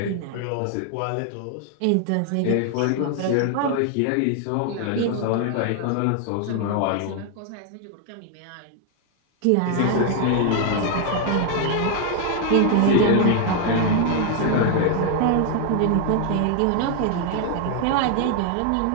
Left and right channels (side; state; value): both; different; correlation 0.00